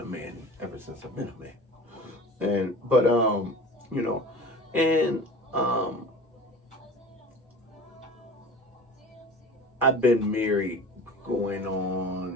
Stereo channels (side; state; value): both; normal; correlation 0.38